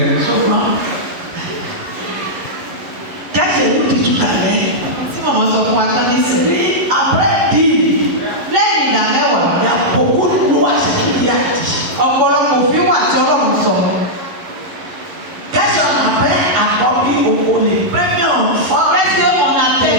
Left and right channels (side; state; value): left; late; 11 ms